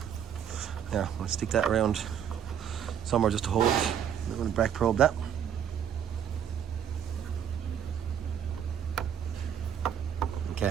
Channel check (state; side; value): quieter; left; 8.8 dB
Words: There, I'll stick that around somewhere just to hold it. I'm going to back probe that.